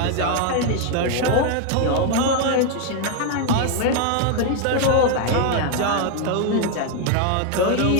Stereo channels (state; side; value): different; both; correlation 0.01